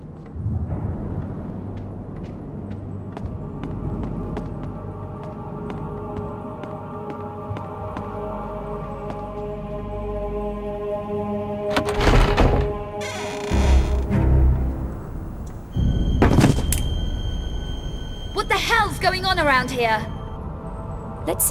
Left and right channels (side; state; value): both; identical; correlation 1.00